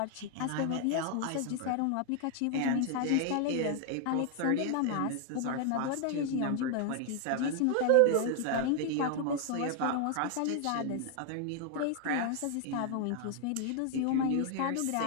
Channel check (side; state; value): both; different; correlation 0.00